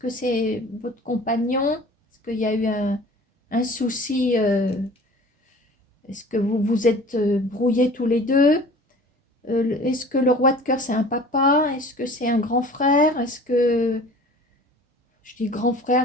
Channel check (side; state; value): both; normal; correlation 0.44